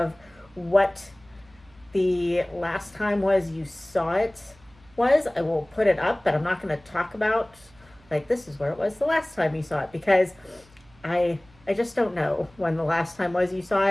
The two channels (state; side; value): noise; right; hum, 28 dB below the sound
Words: what the last time was you saw it was, I will put it up, but I'm not going to talk about, like, this is where it was the last time you saw it, because I just don't know when the last time was you saw